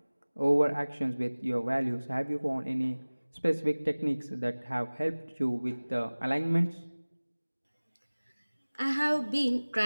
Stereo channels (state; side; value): inverted; both; correlation -1.00